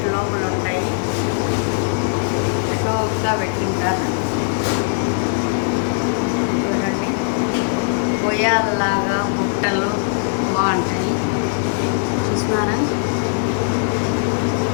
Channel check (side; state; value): right; silent; 66 dB below the other